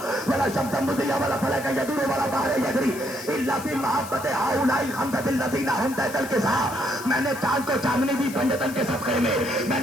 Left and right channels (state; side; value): noise; left; hiss, 14 dB below the sound